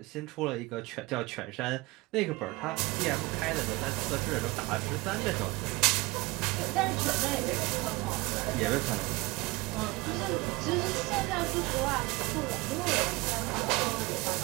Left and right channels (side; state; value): left; quieter; 23.1 dB